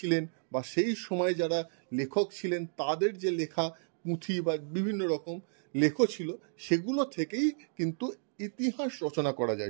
বা সেই সময় যারা লেখক ছিলেন তাদের যে লেখা পুঁথি বা বিভিন্ন রকম লেখ ছিল, সেগুলো থেকেই কিন্তু ইতিহাস রচনা করা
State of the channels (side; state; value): left; silent; digital silence